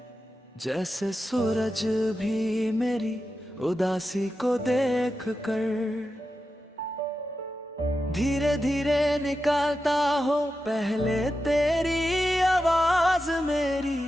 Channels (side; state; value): both; normal; correlation 0.90